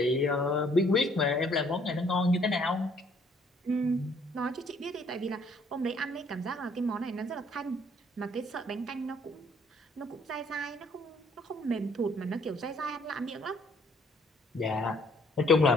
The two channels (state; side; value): normal; both; correlation 0.63